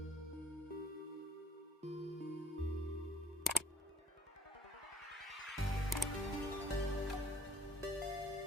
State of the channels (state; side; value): normal; both; correlation 0.61